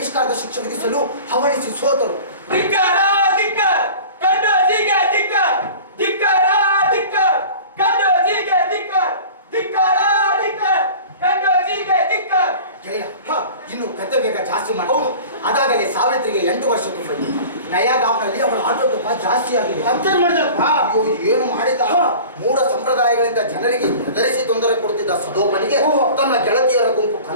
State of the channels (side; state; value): both; inverted; correlation -0.40